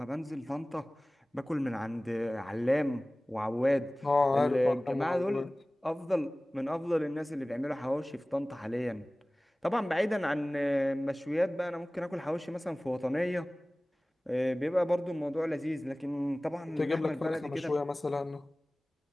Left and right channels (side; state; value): both; normal; correlation 0.98